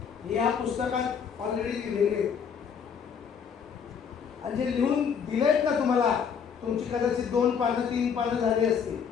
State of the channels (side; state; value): right; quieter; 6.9 dB